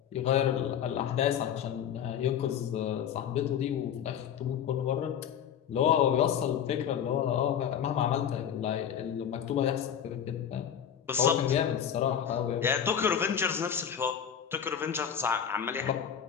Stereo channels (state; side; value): quieter; right; 8.8 dB